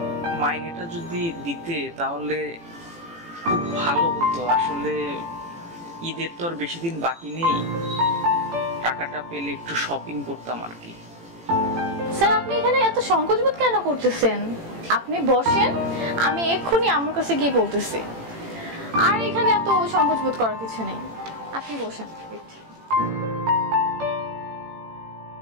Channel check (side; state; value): left; late; 18 ms